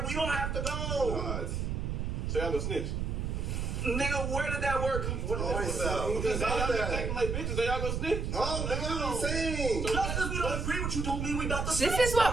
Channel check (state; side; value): noise; right; rumble, 1 dB below the sound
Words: We don't have to go. God. So y'all gonna snitch. Nigga, where did that work? What Oh, did Because y'all gonna take them like bitches, so y'all gonna snitch. Oh, nigga, what are you saying? Just because we don't agree with you don't mean we about to This is